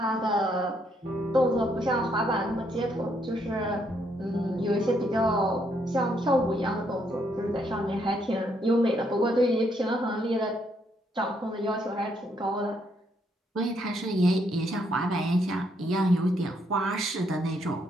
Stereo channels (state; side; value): normal; both; correlation 0.73